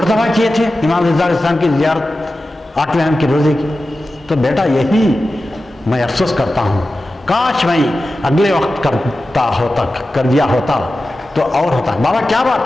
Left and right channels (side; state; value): both; normal; correlation 0.94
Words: کیے تھے امام رضا علیہ السلام کی زیارت 8ویں اہم کے روزے کی۔ تو بیٹا یہی میں افسوس کرتا ہوں، کاش میں اگلے وقت کر دیا ہوتا تو اور ہوتا۔ بابا کیا